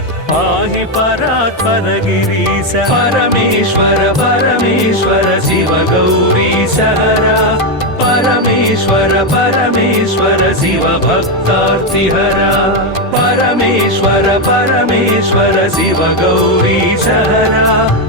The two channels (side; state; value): both; normal; correlation 0.06